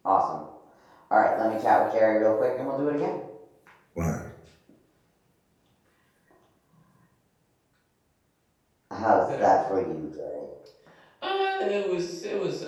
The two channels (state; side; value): identical; both; correlation 1.00